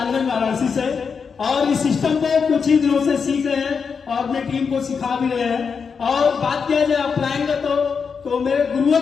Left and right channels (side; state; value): right; quieter; 5.8 dB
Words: वाराणसी से, और इस सिस्टम को कुछ ही दिनों से सीख रहे हैं और अपनी टीम को सिखा भी रहे हैं। और बात किया जाए अपलाइन का तो मेरे गुरुओं